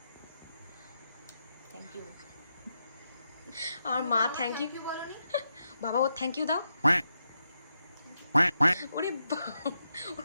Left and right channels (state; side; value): inverted; both; correlation -0.85